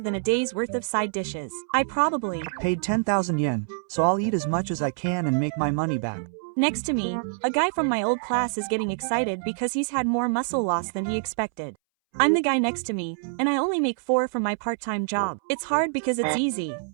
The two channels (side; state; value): left; silent; 61 dB below the other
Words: than a day's worth of side dishes. I probably paid 10,000 yen, so I'll eat as much as I can and make my money back. Next to me, a guy from my old class is getting excited because he's had more muscle loss than he expected. I'm the guy next to me, and I only make 4 from my part-time job. It's hard because it's easy.